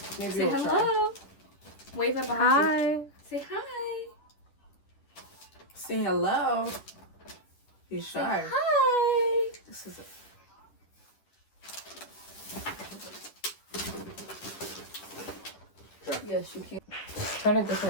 Maybe Say hello. Try. Wave at behind Hi. you. Say hi. Say hello. He's Say shy. hi. This is it. Yes, you can. Turn it this way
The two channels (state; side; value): late; right; 10 ms